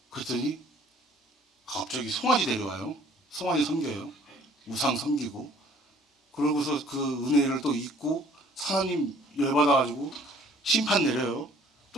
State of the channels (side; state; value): both; normal; correlation 0.56